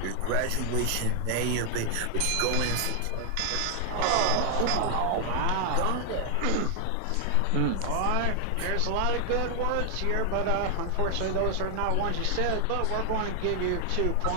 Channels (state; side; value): different; both; correlation 0.00